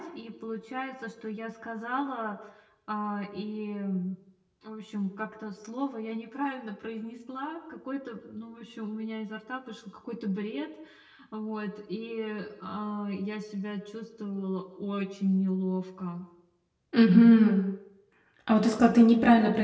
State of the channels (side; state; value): both; identical; correlation 1.00